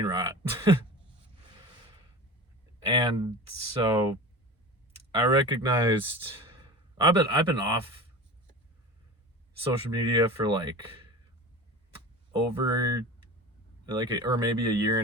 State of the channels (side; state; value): both; normal; correlation 0.33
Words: rot. And so I recognized I've been off social media for like over or maybe a year